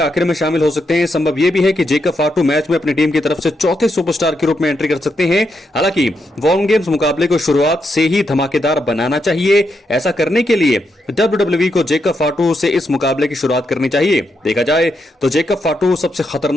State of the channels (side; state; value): both; normal; correlation 0.82